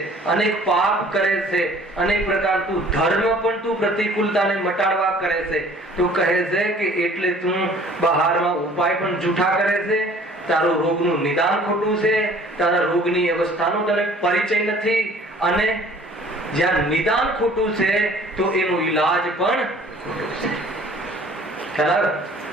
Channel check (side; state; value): both; normal; correlation 0.52